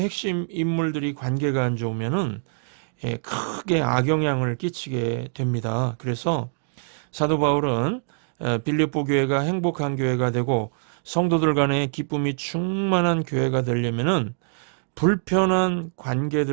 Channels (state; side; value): silent; left; 62 dB below the other